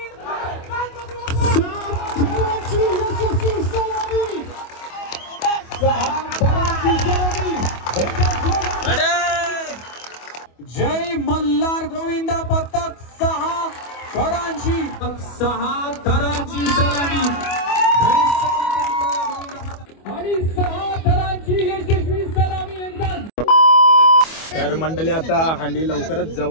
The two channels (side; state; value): right; late; 25 ms